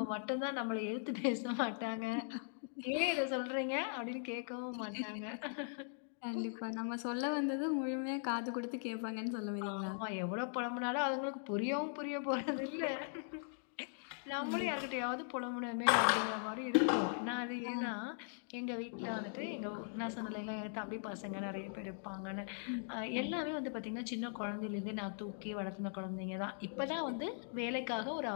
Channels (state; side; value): silent; right; digital silence